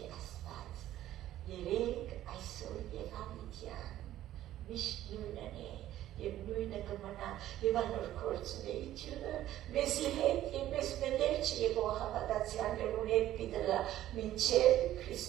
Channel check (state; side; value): quieter; left; 13.3 dB